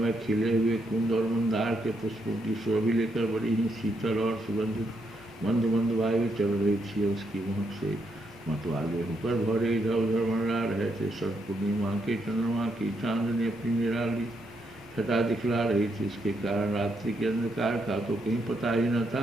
खिले हुए कुंद और मंदार के पुष्पों की शोभी लेकर बड़ी ही शीतल और सुगंधित मंद मंद वायु चल रही थी। उसकी महक से मतवाले होकर भौरे इधर उधर मंडरा रहे थे। शरद पूर्णिमा के चंद्रमा की चांदनी अपनी निराली छटा दिखला रही थी। इसके कारण रात्रि के अंधकार का तो कहीं पता ही न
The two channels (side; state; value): both; normal; correlation 0.78